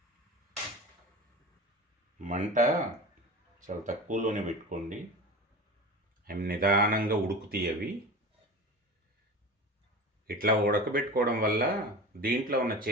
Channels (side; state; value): both; normal; correlation 0.32